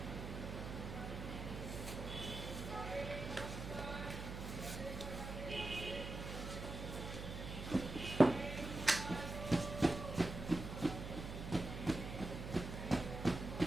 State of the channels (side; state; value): right; noise; hum, 6 dB below the sound